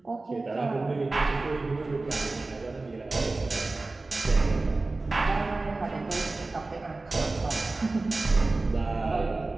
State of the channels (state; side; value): quieter; left; 3.3 dB